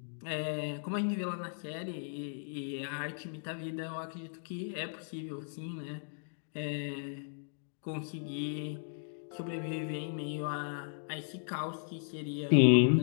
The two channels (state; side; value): silent; right; digital silence